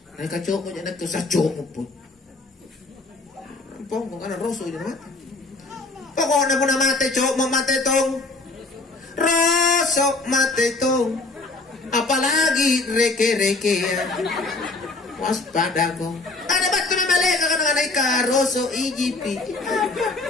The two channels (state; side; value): quieter; right; 3.3 dB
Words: Nah kacau jana tu sacok pun. Pokok kana roso jana mate. Pokoknya pun mate cok mau mate tong. Rosok mate tong. Apalagi reke-reke waspada ko. Ada batu na maleka ka nga ka roso ijipi.